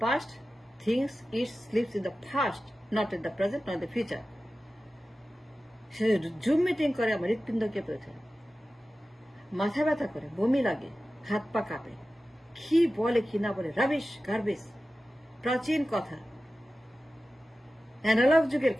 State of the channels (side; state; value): both; normal; correlation 0.95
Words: past, things it leaves in the past, not in the present, not in the future. Say zoom meeting করে আমার হৃৎপিণ্ড কেঁপে ওঠে, মাথা ব্যথা করে, বমি লাগে, হাত পা কাঁপে। কি বলে কি না বলে, রাবিশ গার্বেজ। প্রাচীন কথা, অ্যানালগ যুগের